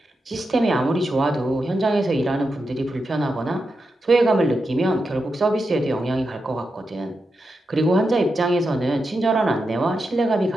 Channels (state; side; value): normal; both; correlation 0.88